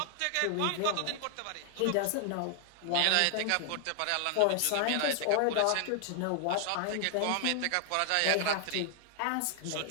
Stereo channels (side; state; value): both; different; correlation 0.00